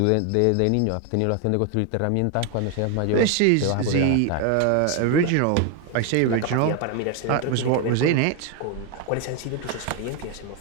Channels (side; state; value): both; different; correlation 0.01